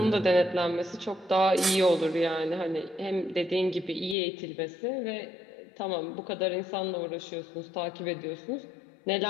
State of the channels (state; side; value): drops out; right; at 4.2 s